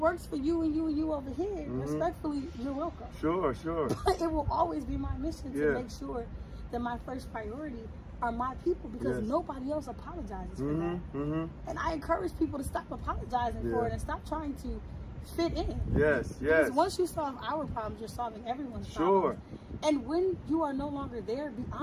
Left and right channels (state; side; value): identical; both; correlation 1.00